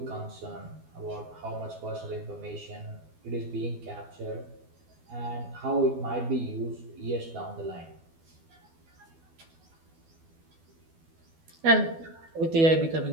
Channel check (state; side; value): late; left; 12 ms